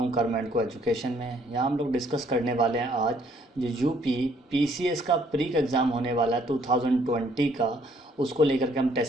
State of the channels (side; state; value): both; normal; correlation 0.65